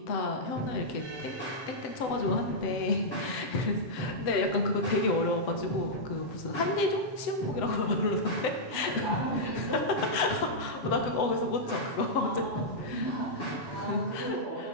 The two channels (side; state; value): right; late; 7.9 ms